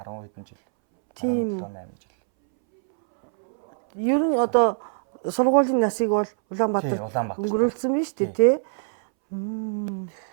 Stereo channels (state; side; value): silent; left; 63 dB below the other